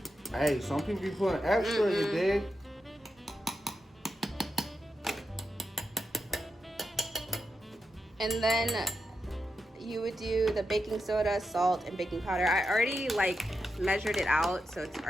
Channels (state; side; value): normal; both; correlation 0.87